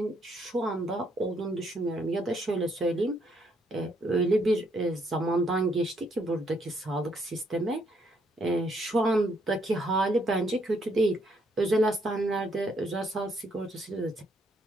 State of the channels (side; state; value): both; normal; correlation 0.72